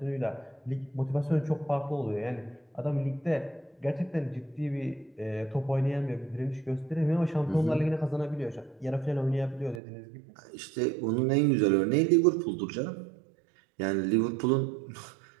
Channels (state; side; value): drops out; left; at 9.8 s